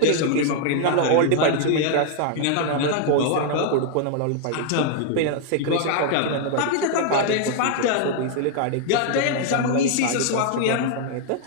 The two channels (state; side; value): different; both; correlation 0.00